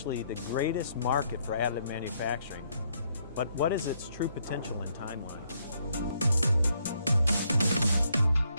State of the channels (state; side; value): inverted; both; correlation -0.73